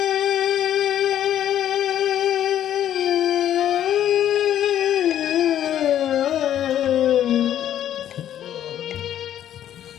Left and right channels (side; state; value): right; quieter; 11.0 dB